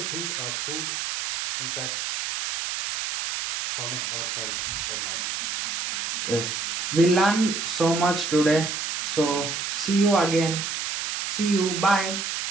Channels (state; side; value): noise; right; hiss, 3 dB below the sound